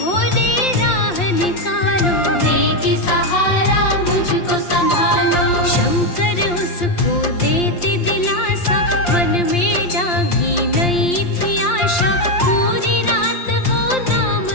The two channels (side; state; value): right; late; 5.7 ms